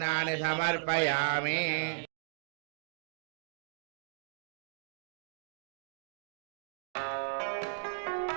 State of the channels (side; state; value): left; silent; digital silence